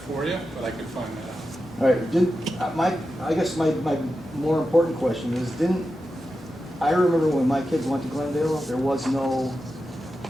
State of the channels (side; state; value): both; normal; correlation 0.90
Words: you, but I could find that out. All right, I guess my more important question is, I remember when my kids went to Glendale, there was no